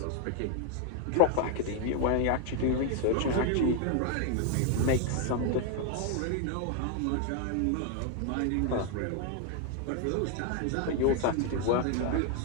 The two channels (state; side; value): different; both; correlation 0.01